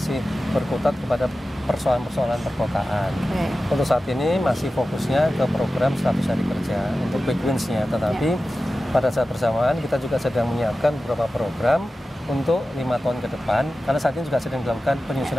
berkutat kepada persoalan-persoalan perkotaan. Untuk saat ini masih fokusnya ke program 100 hari kerja untuk quick wins-nya, tetapi pada saat bersamaan kita juga sedang menyiapkan beberapa program untuk 5 tahun ke depan, karena saat ini juga sedang dilakukan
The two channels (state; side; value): normal; both; correlation 0.94